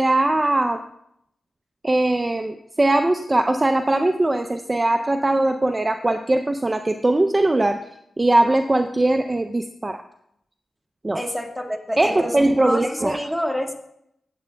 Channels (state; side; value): normal; both; correlation 0.98